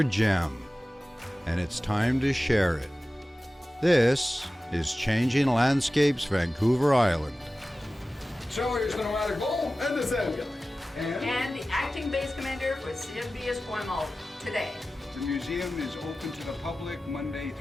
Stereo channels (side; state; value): both; normal; correlation 0.96